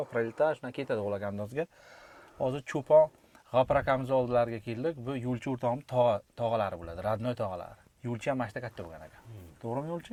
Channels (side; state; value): both; identical; correlation 1.00